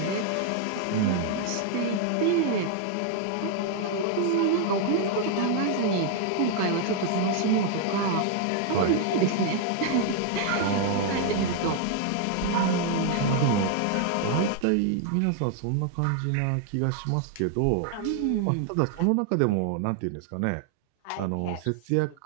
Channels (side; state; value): both; different; correlation 0.00